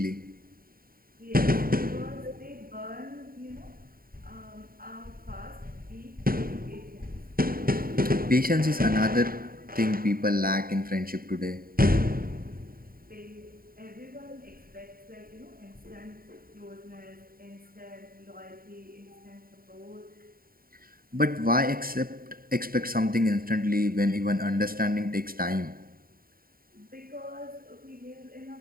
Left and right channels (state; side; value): late; left; 0.43 ms